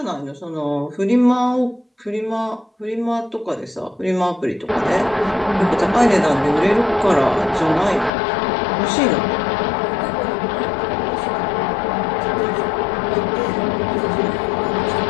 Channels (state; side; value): drops out; right; at 8.1 s